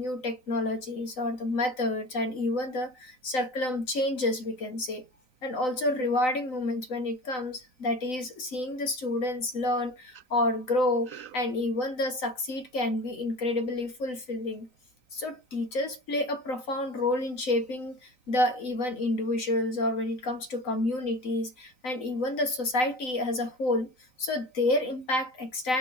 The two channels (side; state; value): right; late; 3.9 ms